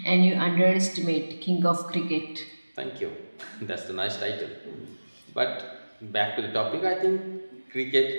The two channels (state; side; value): inverted; both; correlation -1.00